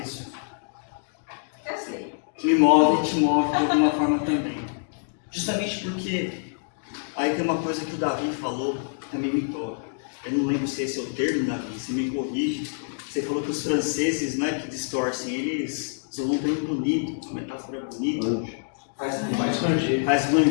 isso Eu sei. me move e te move de alguma forma também. Justamente porque aí tem uma coisa que o Davi falou, também me toca. Eu não lembro se esse é o termo, Davi, você me corrige. Você falou que os franceses, não é que distorcem, eles são um termo bonito, uma metáfora bonita. Faz ranger. Faz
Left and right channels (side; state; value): right; silent; digital silence